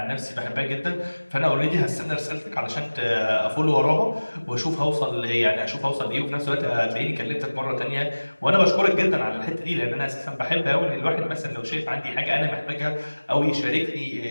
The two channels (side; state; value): both; inverted; correlation -1.00